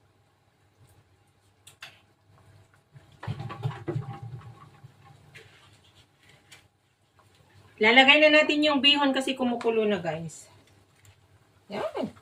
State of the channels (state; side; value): identical; both; correlation 1.00